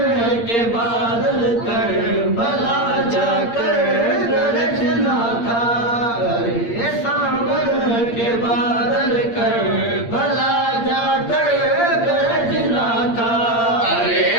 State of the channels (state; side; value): late; right; 8.7 ms